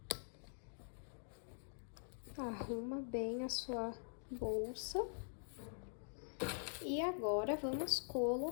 Arruma bem a sua bolsa. E agora vamos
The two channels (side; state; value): right; silent; digital silence